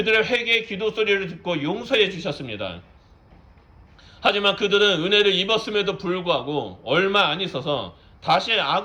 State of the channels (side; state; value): both; identical; correlation 1.00